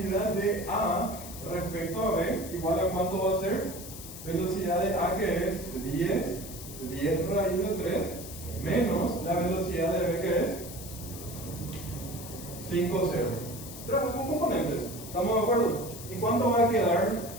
de A respecto a B, igual a cuánto va a ser? Velocidad de A que es 10 raíz de 3, menos la velocidad de B que es 5, 0. Trabaja con componentes. ¿Estamos de acuerdo? ¿Y cuánto va a quedar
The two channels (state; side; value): noise; left; hiss, 12 dB below the sound